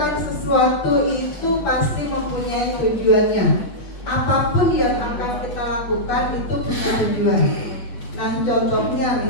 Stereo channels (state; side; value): late; right; 8.2 ms